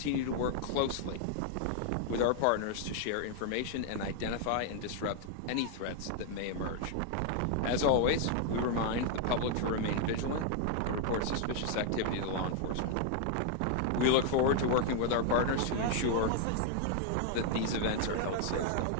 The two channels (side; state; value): both; different; correlation 0.00